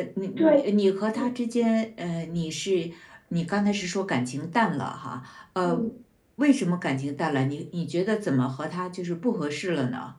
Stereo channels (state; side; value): identical; both; correlation 1.00